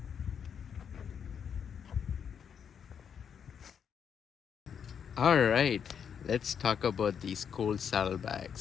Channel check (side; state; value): right; quieter; 7.6 dB